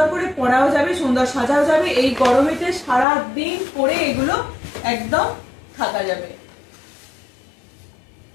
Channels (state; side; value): drops out; right; at 3.1 s